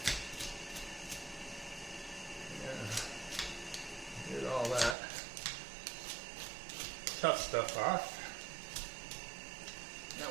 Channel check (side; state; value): left; drops out; at 5.0 s